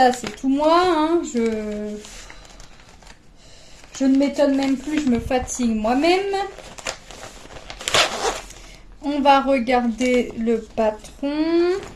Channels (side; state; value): both; identical; correlation 1.00